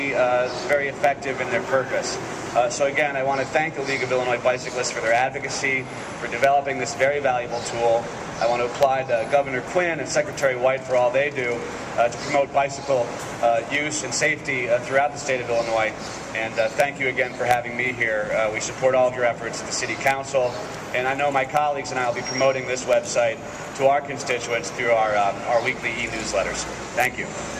very effective in their purpose. So again, I want to thank the League of Illinois Bicyclists for their advocacy, for developing this very valuable tool. I want to applaud Governor Quinn and Secretary White for all they do to promote bicycle use and safety throughout the state of Illinois. And thank you again for having me here. We support all of your efforts at the City Council, and I know my colleagues and I will be promoting this website to our constituents through our weekly e-newsletters. Thank you.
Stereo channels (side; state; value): both; identical; correlation 1.00